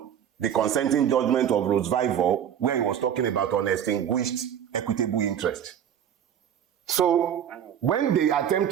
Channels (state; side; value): quieter; left; 9.3 dB